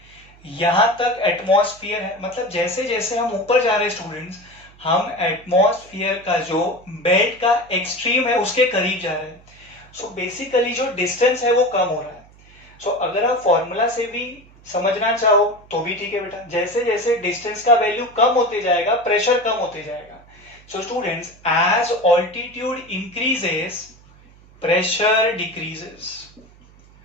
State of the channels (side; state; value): right; noise; hum, 25 dB below the sound